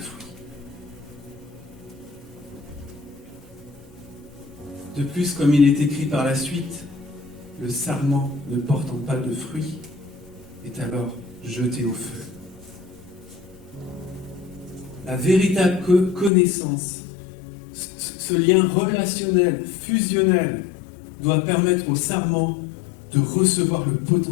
fruit. De plus, comme il est écrit par la suite, le sarment ne portant pas de fruits est alors jeté au feu. La véritable connaissance, ce lien relationnel, fusionnel, doit permettre au sarment de recevoir le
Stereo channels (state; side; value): drops out; right; at 16.3 s